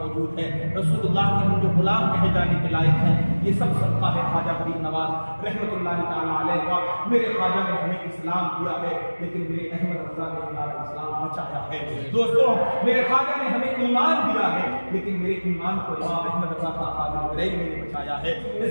ہے، رسول اللہ کے ہم جو غلام کہے جانے کے لائق ہیں، یہ سب صدقہ ہے خواجہ غریب نواز رحمۃ اللہ تعالیٰ علیہ کا۔ میرے خواجہ نے ہمیں اسلام دیا ہے لیکن میرے احمد رضا نے ہمارا اسلام بچایا ہے۔ دوستوں، میرے خواجہ نے ہمیں ایمان دیا ہے لیکن میرے ایمان کو امام احمد رضا کا خواجہ غریب نے بچایا ہے۔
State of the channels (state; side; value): inverted; both; correlation -1.00